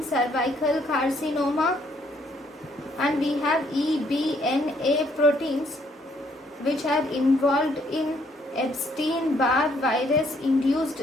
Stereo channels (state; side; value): normal; both; correlation 0.68